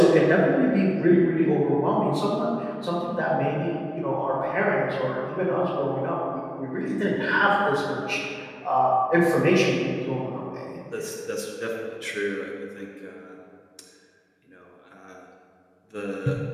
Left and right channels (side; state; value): both; identical; correlation 1.00